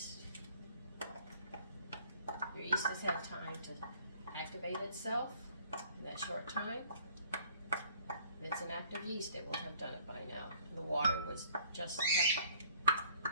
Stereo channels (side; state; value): both; inverted; correlation -0.57